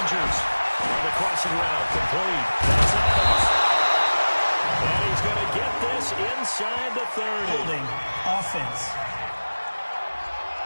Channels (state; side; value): inverted; both; correlation -1.00